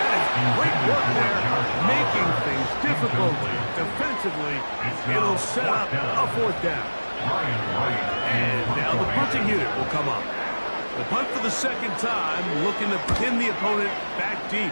That is great work there, making things difficult defensively. It'll set up a 4th down. And now the punting unit will come up. The punt for the 2nd time, looking to pin the opponent back deep.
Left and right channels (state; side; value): inverted; both; correlation -1.00